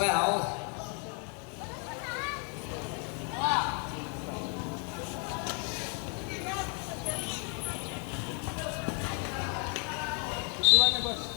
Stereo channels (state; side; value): quieter; right; 38.2 dB